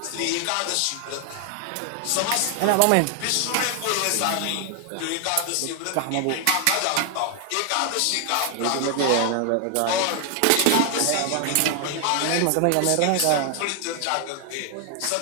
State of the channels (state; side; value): different; both; correlation 0.00